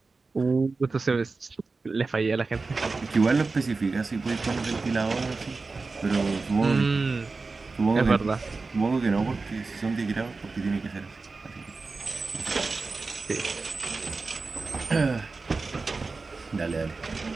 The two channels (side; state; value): left; quieter; 3.9 dB